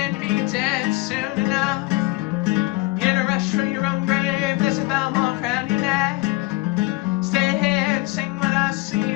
be dead soon enough. In a rush from your own grave, there's a bell mark around your neck. Stay here and sing with us so you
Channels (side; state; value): right; quieter; 22.1 dB